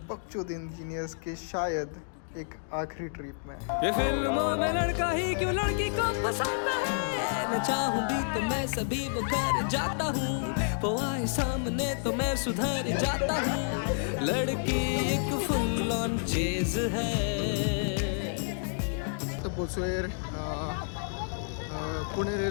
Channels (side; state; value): right; silent; digital silence